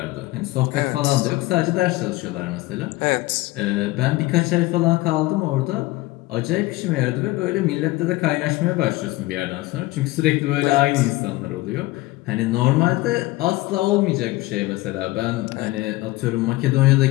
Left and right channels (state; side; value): quieter; right; 19.5 dB